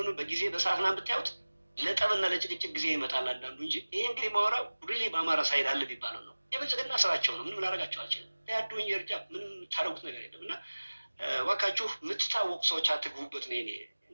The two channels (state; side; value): inverted; both; correlation -1.00